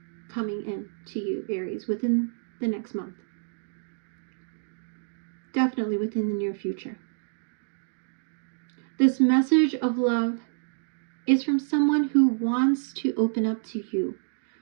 coming in to you, Aries, within the next month. Definitely within the near future. This message of love is from someone who wants to open up to you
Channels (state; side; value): silent; left; digital silence